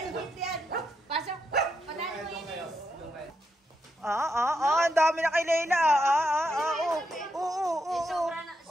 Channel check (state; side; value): normal; both; correlation 0.82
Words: Pasok. Panalo mo yun eh. Ang dami na kay Layla.